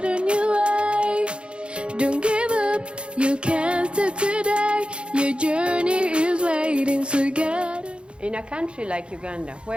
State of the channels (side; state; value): left; late; 0.056 ms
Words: on your way. Don't give up, you can't stop today. Your journey is waiting, so get on. In a country like Uganda,